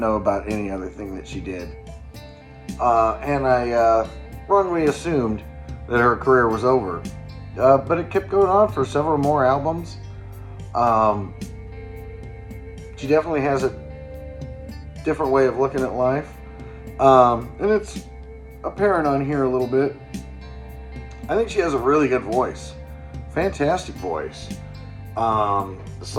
about any other thing that she did. And I wrongly assumed that her career was over. But it kept going on for several more albums. She definitely has a different way of looking at life. And it's apparent on here a little bit. I think she has a really good voice. Fantastic voice. The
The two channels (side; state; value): both; identical; correlation 1.00